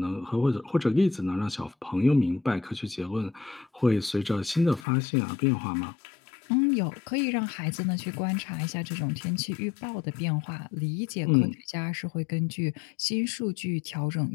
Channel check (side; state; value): right; drops out; at 4.9 s